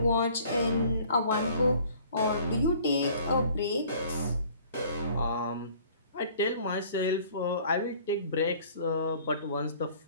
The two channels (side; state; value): both; inverted; correlation -0.53